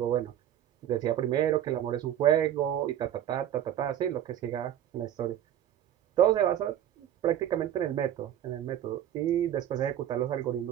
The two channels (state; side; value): quieter; left; 11.1 dB